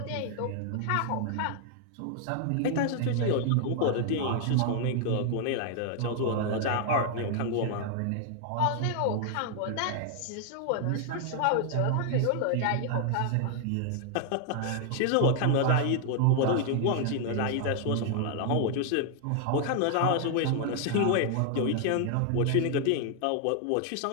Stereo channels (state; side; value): different; both; correlation 0.00